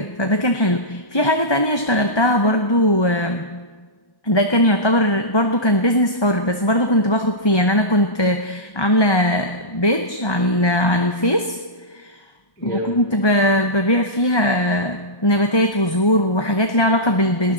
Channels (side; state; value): right; late; 1.1 ms